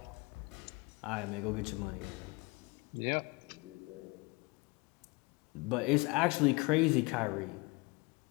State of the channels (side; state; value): right; quieter; 26.5 dB